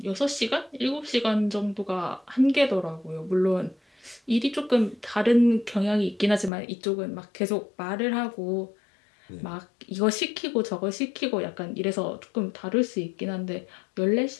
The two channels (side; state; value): right; drops out; at 6.5 s